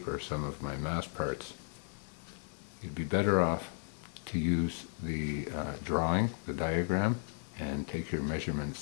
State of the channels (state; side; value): silent; right; 54 dB below the other